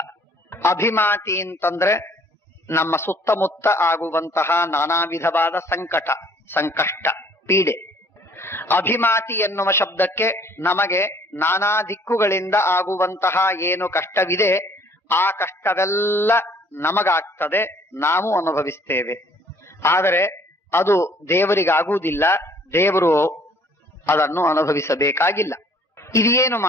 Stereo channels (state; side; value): normal; both; correlation 0.58